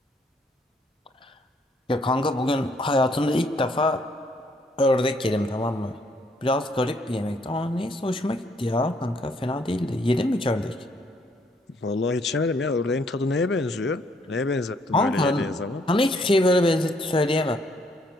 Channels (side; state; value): both; normal; correlation 0.68